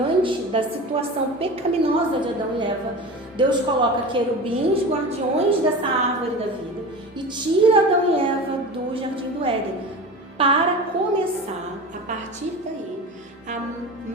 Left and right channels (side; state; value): both; normal; correlation 0.31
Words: da situação pecaminosa de Adão e Eva, Deus coloca querubins, guardiões dessa árvore da vida e tira Adão e Eva do jardim do Éden para começar, a partir daí, a